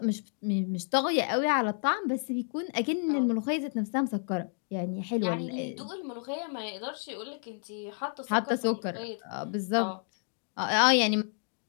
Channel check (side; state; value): right; silent; 58 dB below the other